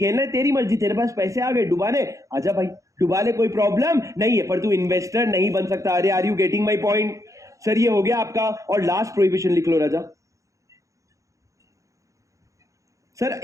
है, तेरी मर्जी, तेरे पास पैसे आ गए डुबाने, आजा भाई डुबा ले, कोई प्रॉब्लम नहीं है, पर तू इन्वेस्टर नहीं बन सकता। अरे are you getting my point? Sir ये हो गया आपका। और लास्ट प्रोहिबिशन लिख लो राजा। सर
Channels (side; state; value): left; late; 0.15 ms